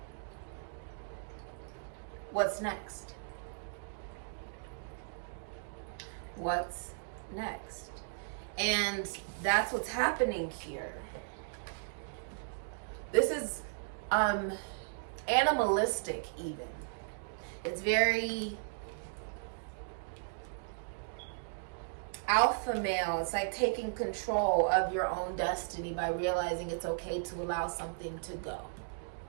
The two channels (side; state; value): left; silent; digital silence